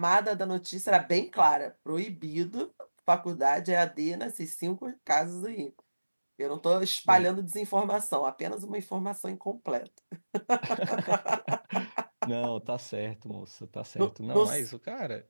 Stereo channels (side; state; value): both; inverted; correlation -1.00